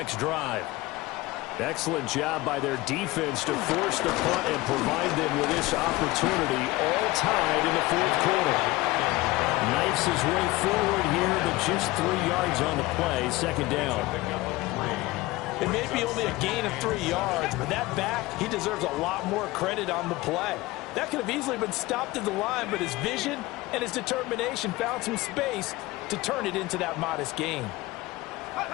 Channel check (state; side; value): quieter; right; 19.7 dB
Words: drive. Excellent job by their defense to force the punt and provide them with this opportunity, all tied in the 4th quarter. Knifes his way forward here, but just 3 yards on the play, 2nd down. It may be only a gain of 3 yards, but that back, he deserves a lot more credit on the play. That could have easily been stopped at the line, but his vision and his determination found some space to turn it into that modest gain.